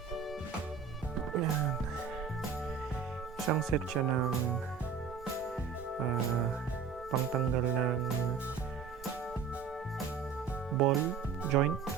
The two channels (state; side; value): quieter; left; 6.1 dB